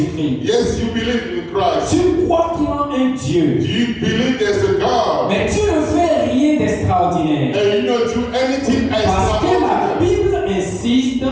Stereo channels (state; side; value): identical; both; correlation 1.00